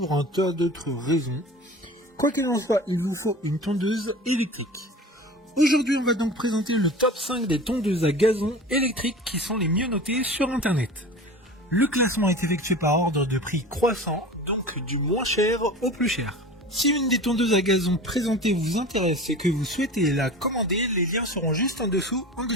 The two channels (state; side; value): normal; both; correlation 0.36